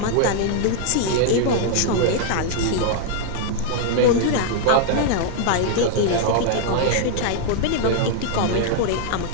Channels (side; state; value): both; different; correlation -0.01